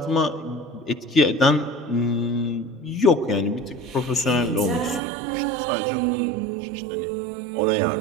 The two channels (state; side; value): drops out; left; at 5.0 s